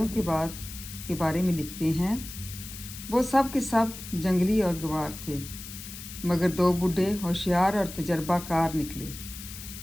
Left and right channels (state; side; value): noise; left; hiss, 12 dB below the sound